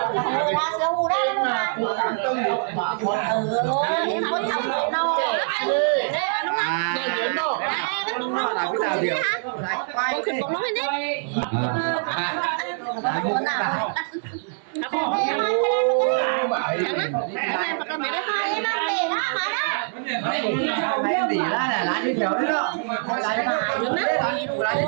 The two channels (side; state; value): left; silent; 63 dB below the other